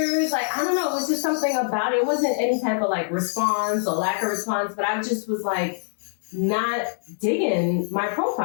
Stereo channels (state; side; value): silent; right; 63 dB below the other